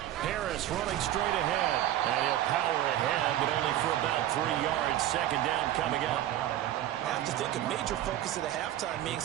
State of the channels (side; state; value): left; quieter; 12.9 dB